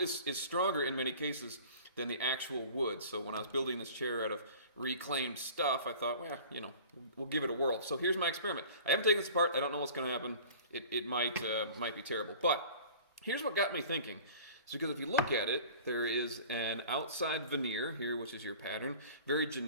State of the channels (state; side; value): inverted; both; correlation -0.43